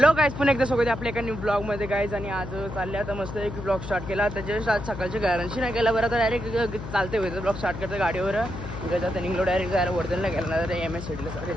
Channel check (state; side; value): noise; left; hum, 9 dB below the sound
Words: गाईज, पुन्हा एकदा स्वागत आहे आपल्या एका न्यू ब्लॉग मध्ये गाईज. आणि आज चालले आता मस्त एक ब्लॉग स्टार्ट केला. त्याच्या आज सकाळच्या गॅरंटी नाही केला बरं, तर डायरेक्ट चालते होते ब्लॉग स्टार्ट करतं गाडीवर. आता निघलो डायरेक्ट जायला वर्धनला गेला ना, तर MS-CITला सगळे